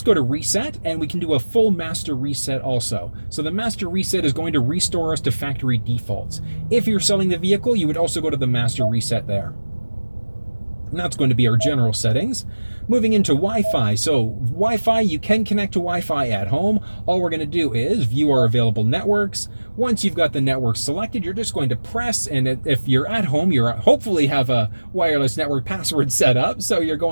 go to reset and we can do a full master reset also. So the master reset is going to restore us to factory defaults. If you're selling the vehicle, you would also go to the master reset there. And that's going to be our general settings. Moving into Wi-Fi. So Wi-Fi, you can connect to Wi-Fi at home. All we're going to do is view our available networks. Once you've got the network selected, you're just going to press, and if you're at home, you hopefully have a wireless network password set up. So you're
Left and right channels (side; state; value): both; inverted; correlation -1.00